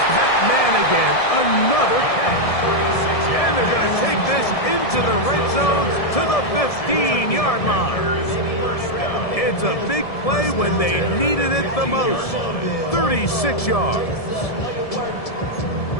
that man again. Another catch. And they're going to take this into the red zone to the 15-yard line. It's a big play when they needed it the most. 36 yards.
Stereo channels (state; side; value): late; right; 1.7 ms